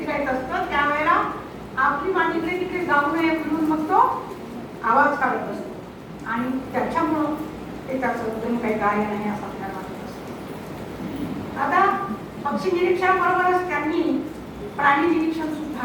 असतं, त्यावेळेला आपली मांडीकडे तिकडे जाऊ नये म्हणून मग तो आवाज काढत असतो आणि त्याच्यामुळं ते त्याचं अजून काही गायन आहे असं आपल्याला वाटत असतं. आता पक्षी निरीक्षणाबरोबरच त्यांनी प्राणी निरीक्षण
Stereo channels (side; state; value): both; identical; correlation 1.00